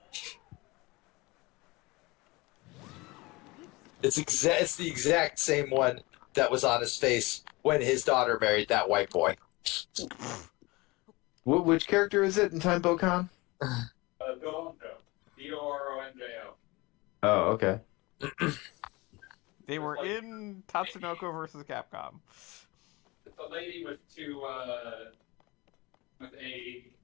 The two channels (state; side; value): quieter; right; 23.4 dB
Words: It's the exact same one that was on his face when his daughter married that white boy. Which character is it in Time Bokan? Doronjo. Doronjo. Oh, okay. They were in Tatsunoko versus Capcom. It's a lady with with a